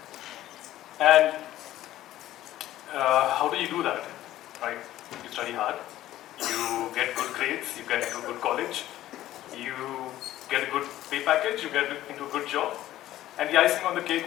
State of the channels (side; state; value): right; quieter; 14.0 dB